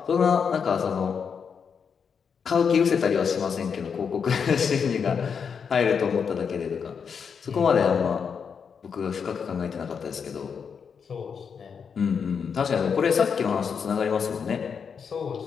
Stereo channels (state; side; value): quieter; right; 6.5 dB